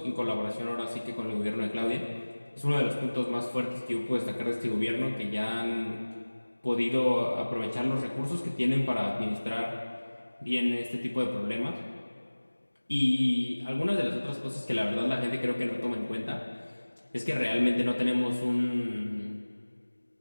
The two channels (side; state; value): both; inverted; correlation -1.00